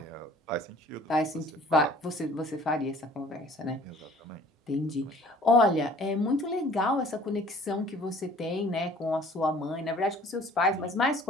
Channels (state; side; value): normal; both; correlation 0.52